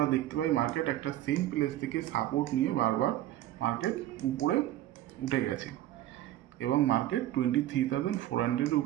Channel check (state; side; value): quieter; left; 13.7 dB